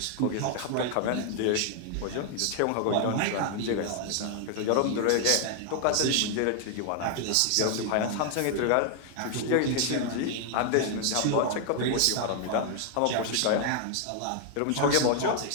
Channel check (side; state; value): both; different; correlation 0.00